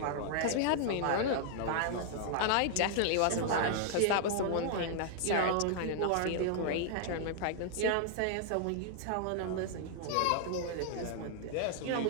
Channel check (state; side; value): different; both; correlation -0.01